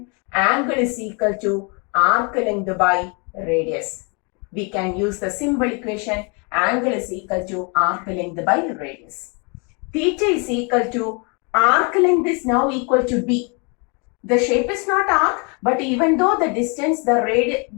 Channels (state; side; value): quieter; right; 33.7 dB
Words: angle is equal to arc length by radius. We can use the simple equation angle is equal to arc length by radius. Theta is equal to arc length is now equal to B. The shape is not arc, but even though the distance,